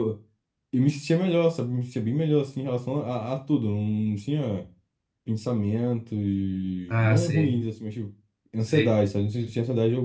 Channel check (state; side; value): identical; both; correlation 1.00